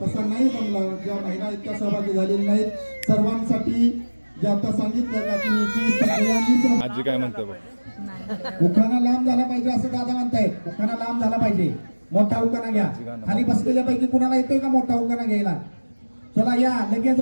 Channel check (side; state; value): both; inverted; correlation -1.00